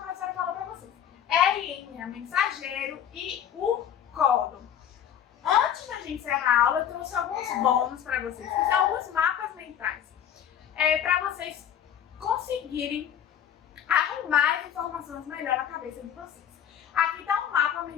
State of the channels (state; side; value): quieter; right; 9.4 dB